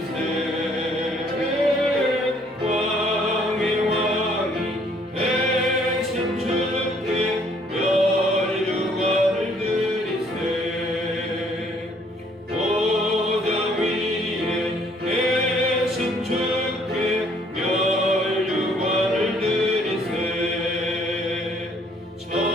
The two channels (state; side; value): normal; both; correlation 0.63